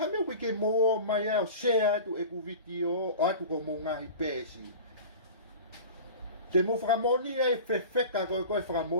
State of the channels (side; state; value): both; inverted; correlation -0.36